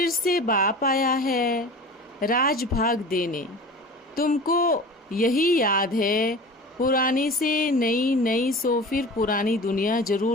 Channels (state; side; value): normal; both; correlation 0.37